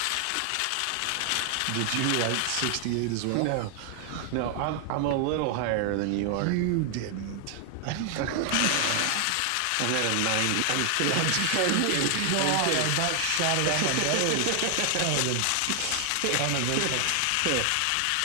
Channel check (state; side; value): different; both; correlation 0.00